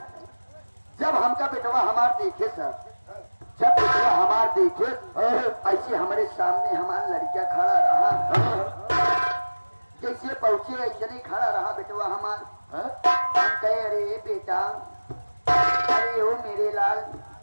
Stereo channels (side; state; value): both; inverted; correlation -1.00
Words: जब हमका बेटवा हमार देखे सर जब बेटवा हमार देखे ऐसे हमारे सामने हमारा लड़किया खड़ा रहा जैसे पहुंचे ऐसे नहीं खड़ा रहा बेटवा हमार। हम कहे अरे बेटा अरे ओ मेरे लाल